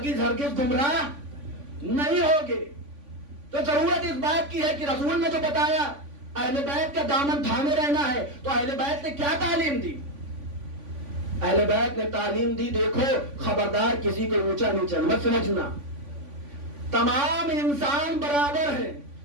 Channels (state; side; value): late; left; 3.5 ms